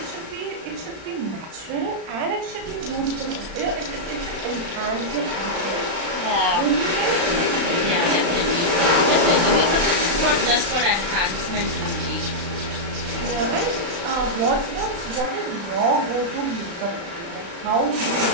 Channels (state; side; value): late; left; 35 ms